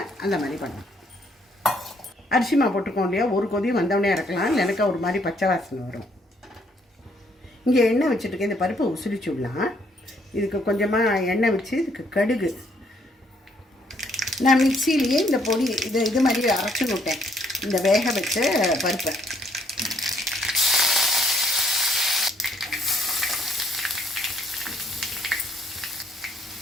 அந்த மாதிரி பண்ணலாம். அரிசி மாவு போட்டுக்கோ இல்லையா, ஒரு கொதி வந்தவொடனே இறக்கலாம். இல்லைனாக்கா ஒரு மாதிரி பச்சை வாசனை வரும். இங்கே எண்ணெய் வச்சுட்டுருக்கேன். இந்த பருப்பை உசுரிச்சு விடலாம். இதுக்கு கொஞ்சமாக எண்ணெய் வச்சு இதுக்கு கடுகு நான் மிக்சியிலேயே இந்த பொடி இது மாதிரி அரைச்சி விட்டேன். இந்த வேக வச்ச பருப்பை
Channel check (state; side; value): normal; both; correlation 0.68